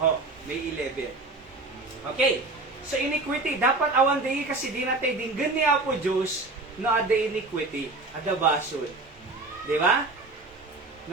May 11. Okay. So, iniquity. Dapat awan day kasi di natin dinggan ni Apo Diyos na ada iniquity. Ada basol. Di ba?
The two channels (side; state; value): left; quieter; 3.3 dB